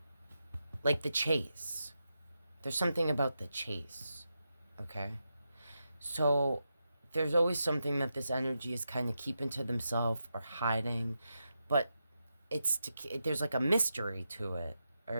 chase. There's something about the chase, okay? So there's always something that this energy is kind of keeping to themselves or hiding, but there's like a mystery to it, all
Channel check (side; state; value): both; inverted; correlation -0.87